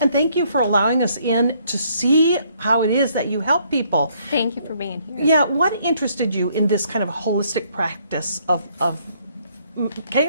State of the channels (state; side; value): inverted; both; correlation -0.67